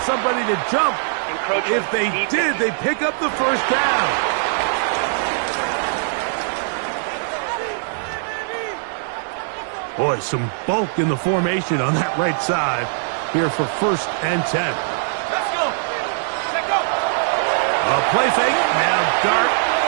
somebody to jump. If they did, they pick up the 1st down. Boy, some bulk in the formation on that right side here for 1st and 10. Let's go. A play fake, now dart.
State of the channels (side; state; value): left; silent; 56 dB below the other